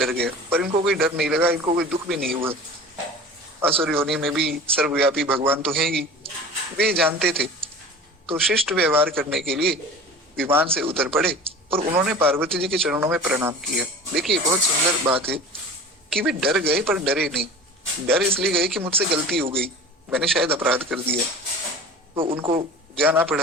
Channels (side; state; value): both; normal; correlation 0.38